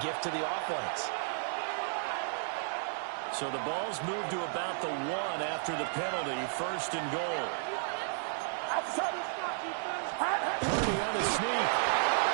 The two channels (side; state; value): left; silent; digital silence